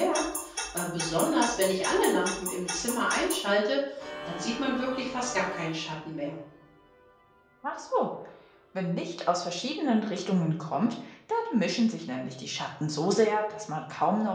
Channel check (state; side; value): identical; both; correlation 1.00